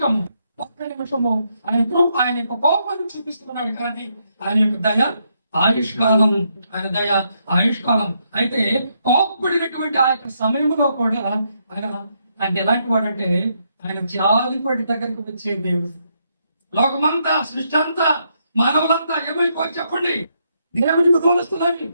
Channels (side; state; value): both; inverted; correlation -0.77